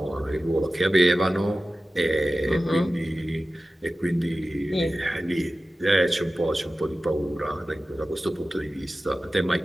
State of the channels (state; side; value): normal; both; correlation 0.95